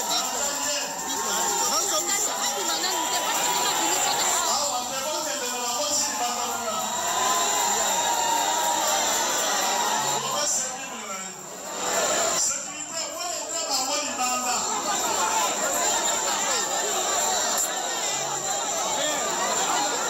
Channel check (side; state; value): both; identical; correlation 1.00